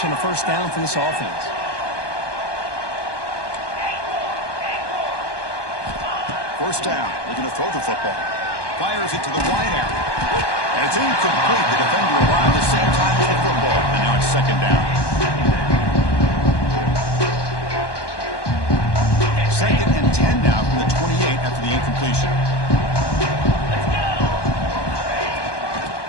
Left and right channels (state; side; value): late; right; 1.2 ms